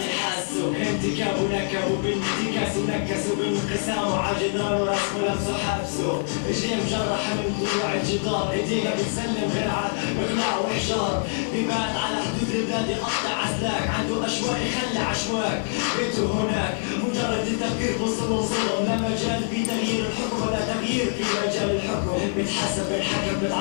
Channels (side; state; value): right; silent; digital silence